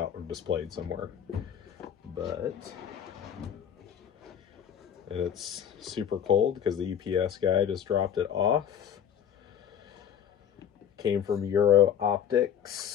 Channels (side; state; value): right; quieter; 8.8 dB